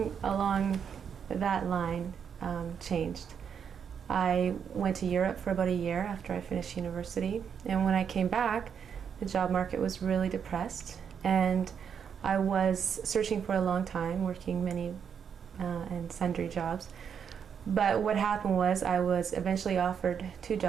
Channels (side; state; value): left; quieter; 7.4 dB